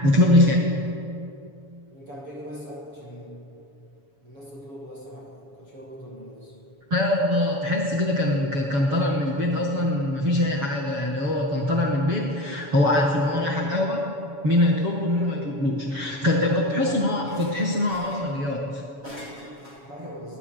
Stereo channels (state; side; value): late; left; 7.2 ms